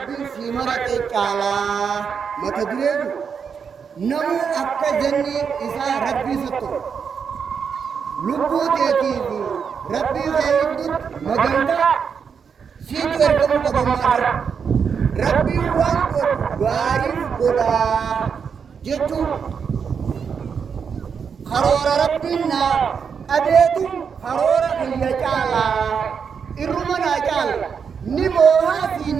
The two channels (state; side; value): quieter; left; 6.5 dB